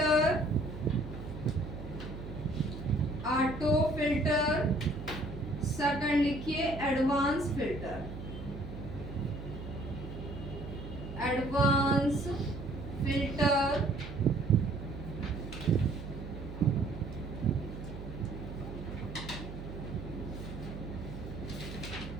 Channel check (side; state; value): right; noise; hum, 10 dB below the sound